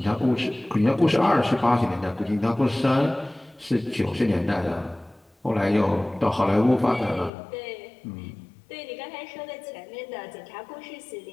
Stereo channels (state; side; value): drops out; right; at 7.3 s